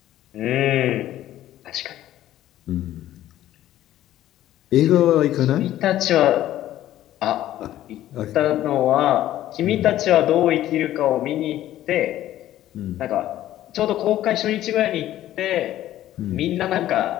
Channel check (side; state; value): right; quieter; 13.3 dB